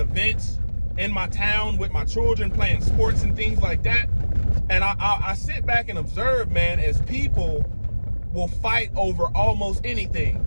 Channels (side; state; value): both; inverted; correlation -1.00